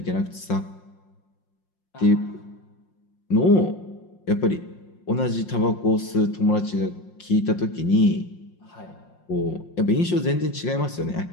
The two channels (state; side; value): late; right; 5.6 ms